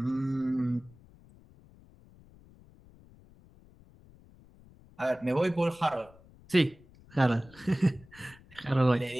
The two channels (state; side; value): noise; left; rumble, 25 dB below the sound